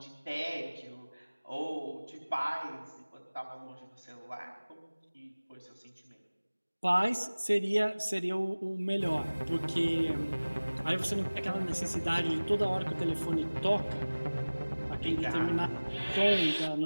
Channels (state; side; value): inverted; both; correlation -1.00